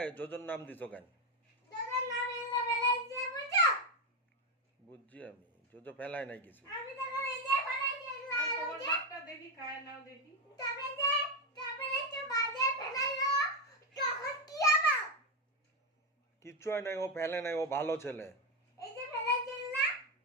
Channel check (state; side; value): normal; both; correlation 0.08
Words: যোজন নাম দিছো কেন? বুঝছি আমি, যোজো ফেলায় নাই কিছু। কিচ্ছু হয় নাই, ও ফেলে নাই, ও ভালো ছেলে।